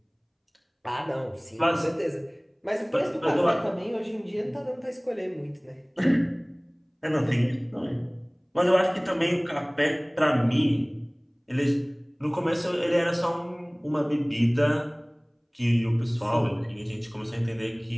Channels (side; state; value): both; identical; correlation 1.00